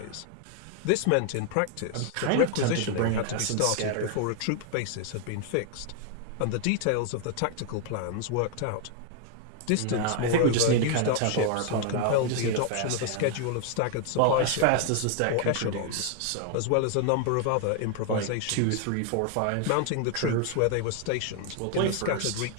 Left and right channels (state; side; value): different; both; correlation 0.00